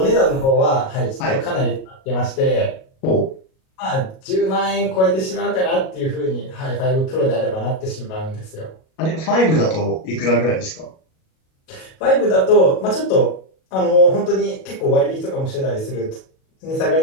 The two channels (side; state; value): right; late; 37 ms